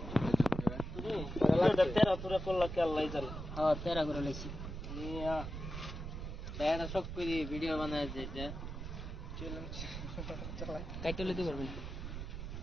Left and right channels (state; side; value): noise; right; rumble, 7 dB below the sound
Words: তেরা তোরা করলা কে আল্লাহ জানে। হ্যাঁ তেরা করে লইছি। মিয়া তেরা সব করে ভিডিও বানায় যেটা কাইটে লইতে পারবেন।